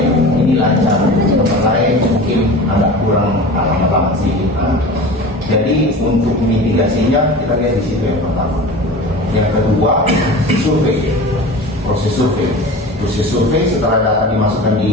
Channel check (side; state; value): both; normal; correlation 0.35